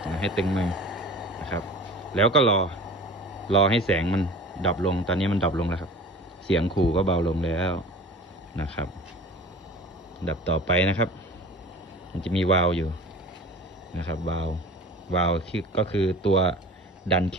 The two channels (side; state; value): both; normal; correlation 0.40